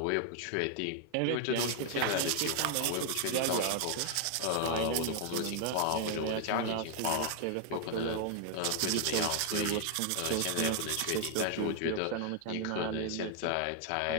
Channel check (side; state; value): both; different; correlation 0.00